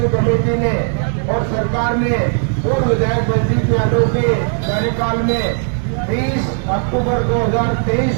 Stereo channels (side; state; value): left; silent; 55 dB below the other